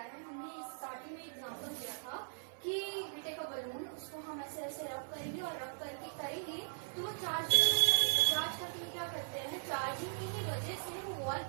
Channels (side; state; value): left; silent; digital silence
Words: हमने स्टार्टिंग में एग्जांपल दिया था कि वी टेक अ बलून, उसको हम ऐसे ऐसे रब करेंगे और रब करके करेंगे तो वो चार्ज करके क्या करते हैं, चार्जिंग की ही वजह से वो वॉल